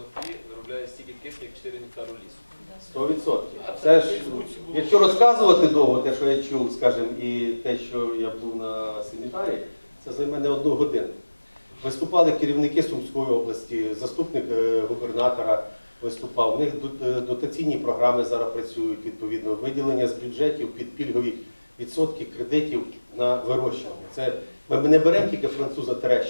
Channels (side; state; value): both; inverted; correlation -1.00